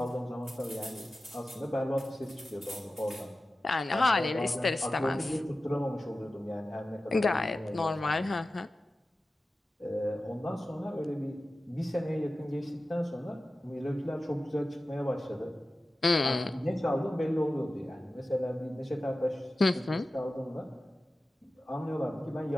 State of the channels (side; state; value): both; normal; correlation 0.95